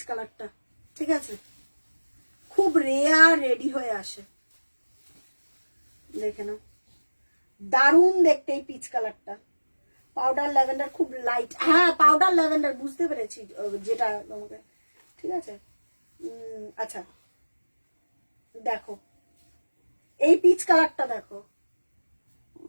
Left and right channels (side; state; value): both; inverted; correlation -1.00